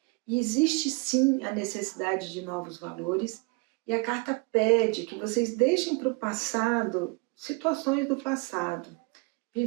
E existe sim a necessidade de novos valores, e a carta pede que vocês deixem para o passado situações do passado,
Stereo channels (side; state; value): left; quieter; 28.9 dB